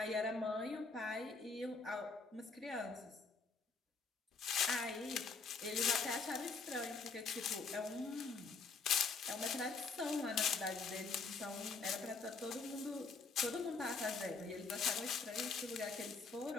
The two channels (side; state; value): right; quieter; 4.4 dB